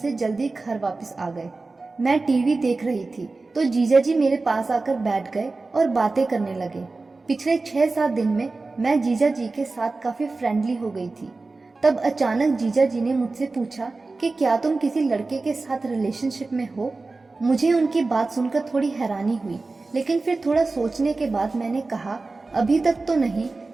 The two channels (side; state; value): left; quieter; 3.6 dB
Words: जल्दी घर वापस आ गए। मैं टीवी देख रही थी तो जीजा जी मेरे पास आकर बैठ गए और बातें करने लगे। पिछले 6-7 दिन में मैं जीजा जी के साथ काफी फ्रेंडली हो गई थी। तब अचानक जीजा जी ने मुझसे पूछा कि क्या तुम किसी लड़के के साथ रिलेशनशिप में हो। मुझे उनकी बात सुनकर थोड़ी हैरानी हुई, लेकिन फिर थोड़ा सोचने के बाद मैंने कहा, अभी तक तो नहीं,